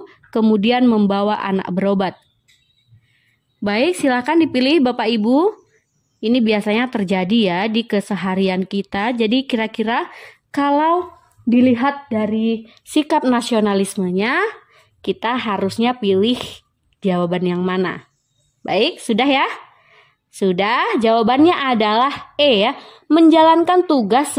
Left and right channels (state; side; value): identical; both; correlation 1.00